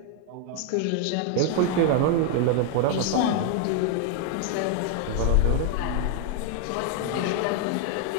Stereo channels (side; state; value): both; different; correlation 0.00